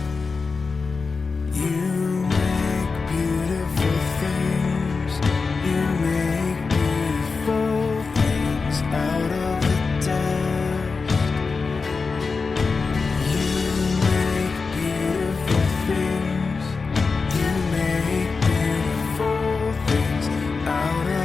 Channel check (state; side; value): quieter; right; 4.5 dB